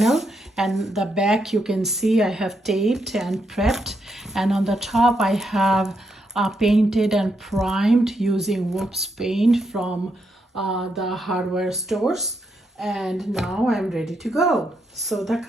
and the back you can see I have taped and prepped, and on the top I have painted and primed using Whoops paint from the hardware stores. And now I'm ready to go. So the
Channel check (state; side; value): normal; both; correlation 0.80